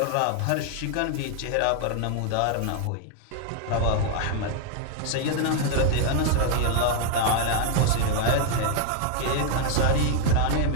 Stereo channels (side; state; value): both; different; correlation 0.00